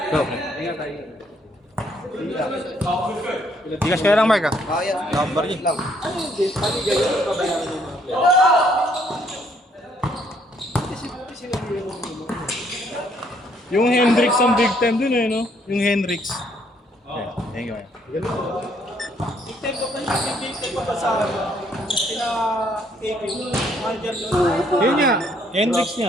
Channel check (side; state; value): both; normal; correlation 0.67